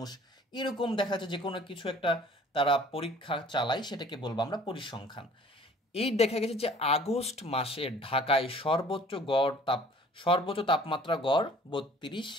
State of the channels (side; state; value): both; normal; correlation 0.51